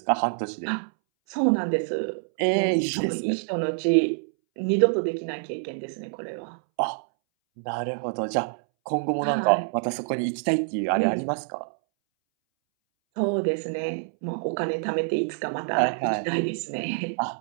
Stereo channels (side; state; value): left; silent; 61 dB below the other